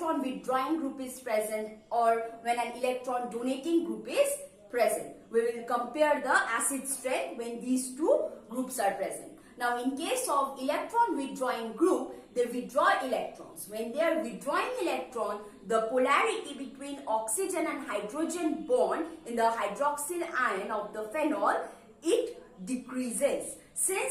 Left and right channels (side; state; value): both; identical; correlation 1.00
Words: withdrawing group is present or when an electron donating group is present. We will compare the acid strength when these two groups are present. Now in case of electron withdrawing group, they withdraw electrons. When they are withdrawing electron, the polarity between oxygen and hydrogen bond in the hydroxyl ion of the phenol, it decreases.